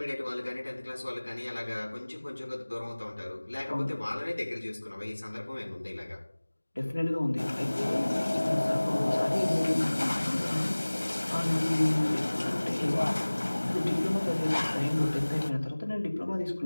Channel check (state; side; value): inverted; both; correlation -1.00